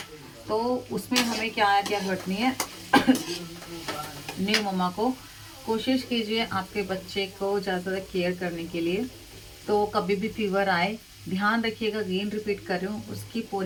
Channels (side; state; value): both; identical; correlation 1.00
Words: तो उसमें हमें क्या घटनी है न्यू मम्मा को कोशिश कीजिए आपके बच्चे को ज़्यादा केयर करने के लिए। तो कभी भी फीवर आए ध्यान रखिएगा, अगेन रिपीट कर रही हूँ, उसकी